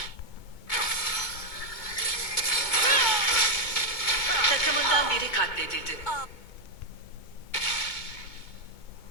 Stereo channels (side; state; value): right; late; 2.2 ms